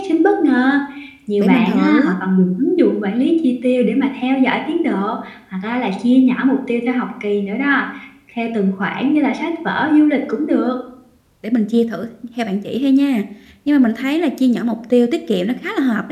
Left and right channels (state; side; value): identical; both; correlation 1.00